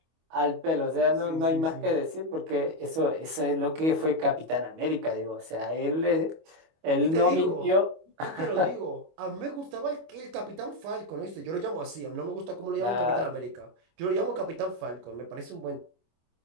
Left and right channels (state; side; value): late; left; 25 ms